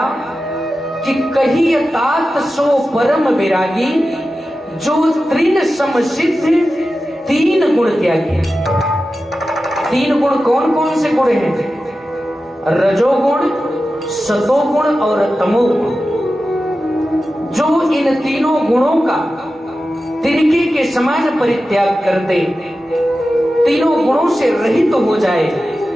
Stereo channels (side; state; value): both; normal; correlation 0.93